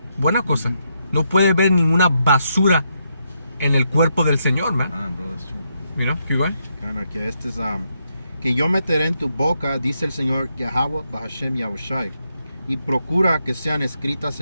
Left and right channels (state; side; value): inverted; both; correlation -0.80